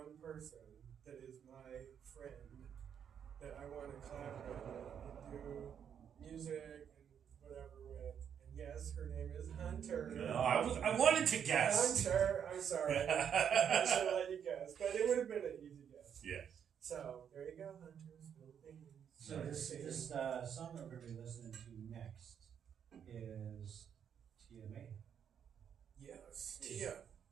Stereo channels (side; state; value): left; quieter; 8.2 dB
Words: person that is my friend that I want to collaborate with and do music and whatever with. And yes, her name is Hunter. No, I wanted to guess. Hunter, I'm sorry. I should have let you guess, but it would have been an easy guess. Yes. So there you go, Hunter's Philippines. So this song that we're going to be listening to next is Tia May. Yes, Tia.